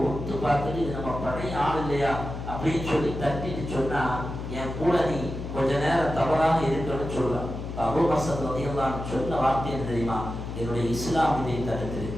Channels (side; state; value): left; noise; hum, 7 dB below the sound